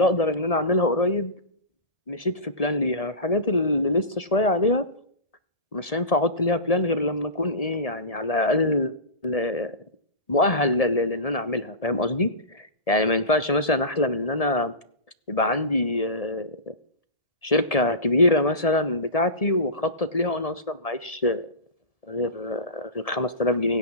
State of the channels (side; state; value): right; late; 1.7 ms